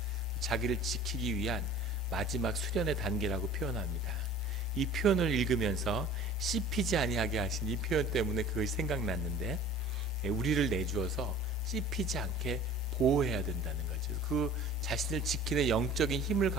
자기를 지키기 위한 마지막 수련의 단계라고 표현합니다. 이 표현을 읽으면서 씹히지 아니하게 하신 이 표현 때문에 그것이 생각났는데, 우리를 내주어서 씹히지 않게 보호해야 된다는 거죠. 그 자신을 지키는 영적인 힘을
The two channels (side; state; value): both; normal; correlation 0.45